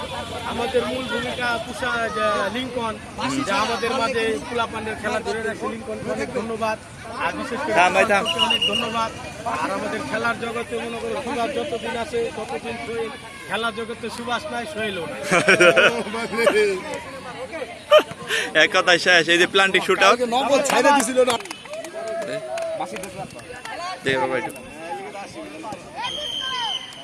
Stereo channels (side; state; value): both; identical; correlation 1.00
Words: আমাদের মূল ভূমিকা পুষা লিঙ্কন, যা আমাদের মাঝে পোলাপানের খেলা ধরে রাখছে। লিঙ্কনকে অনেক ধন্যবাদ, আর বিশেষ করে অনেক ধন্যবাদ। আর আমাদের খেলার জগতে মনে করো সুভাষ যতদিন আছে ততদিন সোহেল, খেলার জগতে সুভাষ নাই সোহেলও না। এক কথায় শেষ। এই যে প্লান্টিক শুট আউট